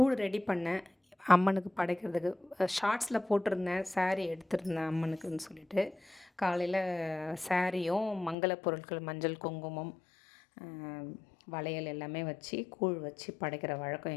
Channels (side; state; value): right; drops out; at 8.3 s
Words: ready பண்ணேன் அம்மனுக்கு படைக்கிறதுக்கு. ஷார்ட்ஸில் போட்டிருந்தேன், சாரீ எடுத்திருந்தேன் அம்மனுக்குன்னு சொல்லிட்டு. காலையில் சாரியும் மங்கள பொருட்கள் மஞ்சள் குங்குமம் வளையல் எல்லாமே வச்சு கூழ் வச்சு படைக்கிற வழக்கம்